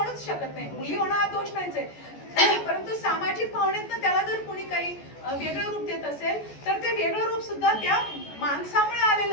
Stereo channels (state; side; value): late; right; 14 ms